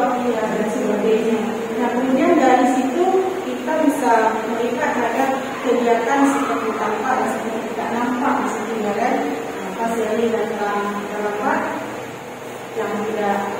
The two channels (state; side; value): identical; both; correlation 1.00